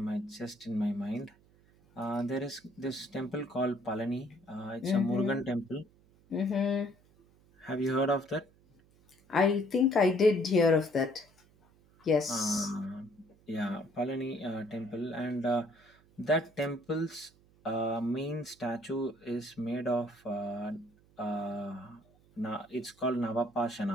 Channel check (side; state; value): right; noise; hum, 30 dB below the sound